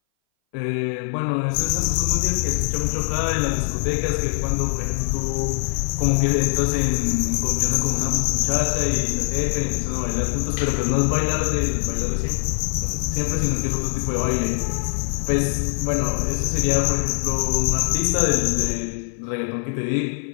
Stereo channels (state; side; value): silent; right; 60 dB below the other